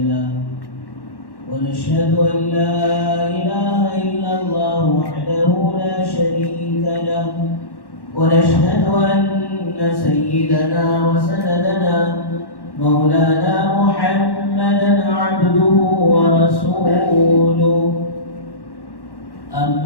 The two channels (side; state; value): right; late; 1.1 ms